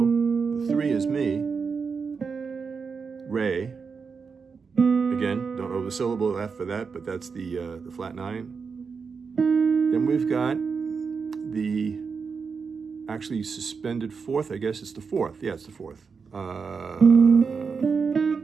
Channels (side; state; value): left; quieter; 5.4 dB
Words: the 3 is mi, re. Again, don't know the syllable F for that, but that's the flat 9. Then we've got the actually suspended 4th, I guess it's the 4th. Yeah, it's the 4th.